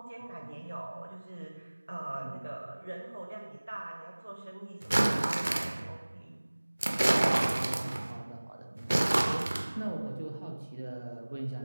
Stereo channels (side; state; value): both; inverted; correlation -1.00